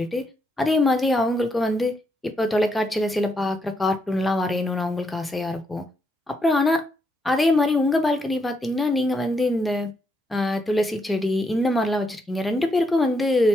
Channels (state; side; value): normal; both; correlation 0.79